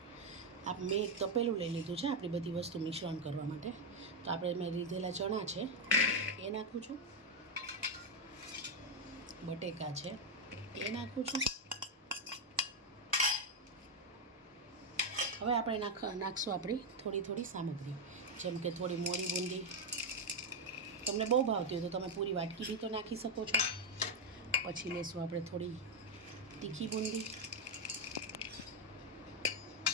મેં એક તપેલું લઈ લીધું છે આપણી બધી વસ્તુ મિશ્રણ કરવા માટે. તો આપણે મેં લીધેલા ચણા છે એ નાખું છું, બટેકા છે એ નાખું છું. હવે આપણે નાખશું આપણી થોડી સામગ્રી, જેમ કે થોડી મોળી બૂંદી. તમને બહુ ભાવતી હોય તો તમે પૂરી વાટકી બી તો નાખી શકો છો. પછી લેશું આપણે થોડી તીખી બૂંદી,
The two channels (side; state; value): both; normal; correlation 0.03